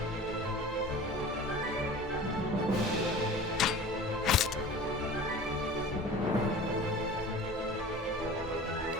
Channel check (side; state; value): both; normal; correlation 0.39